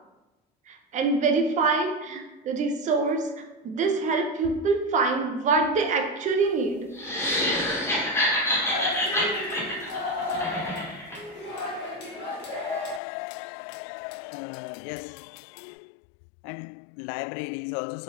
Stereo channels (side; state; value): right; drops out; at 13.0 s